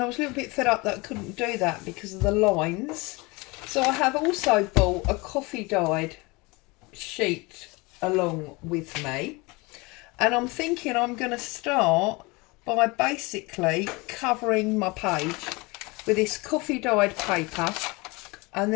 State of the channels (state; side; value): quieter; right; 25.4 dB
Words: was a little bit fed up that I couldn't do that because of the lines. So I have also bought a coffee dyed sheet along with me, and I'm thinking I'm going to start by basically covering my page with this coffee dyed paper. And